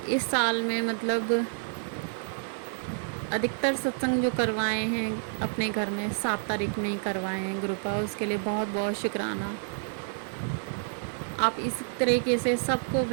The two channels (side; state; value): left; silent; 59 dB below the other